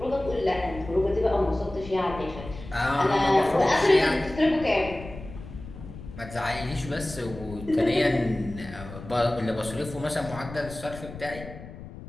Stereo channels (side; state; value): left; noise; rumble, 14 dB below the sound